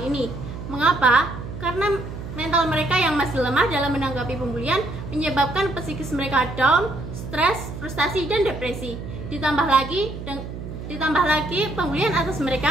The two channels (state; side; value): noise; right; hum, 9 dB below the sound